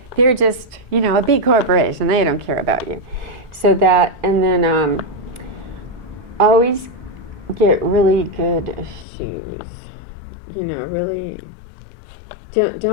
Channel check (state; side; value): drops out; right; at 9.1 s